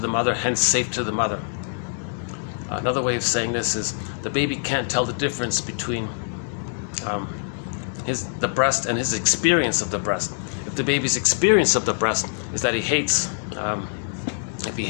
mother, hence safe to the mother. Another way of saying this is the baby can't tell the difference between the breast and his experience of the breast. If the baby's experience of the breast is that he hates, if he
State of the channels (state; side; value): silent; right; digital silence